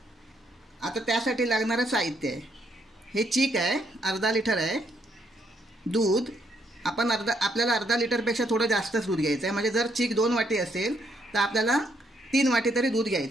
आता त्यासाठी लागणारं साहित्य आहे, हे चीक आहे, अर्धा लिटर आहे. दूध आपण आपल्याला अर्धा लिटरपेक्षा थोडं जास्तच दूध घ्यायचं आहे. म्हणजे जर चीक 2 वाटी असेल तर आपल्याला 3 वाटी तरी दूध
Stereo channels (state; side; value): normal; both; correlation 0.73